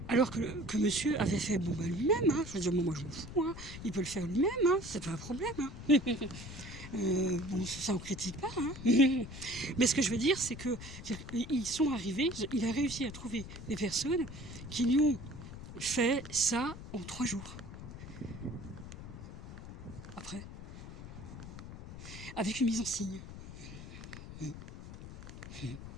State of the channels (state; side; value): noise; left; rumble, 12 dB below the sound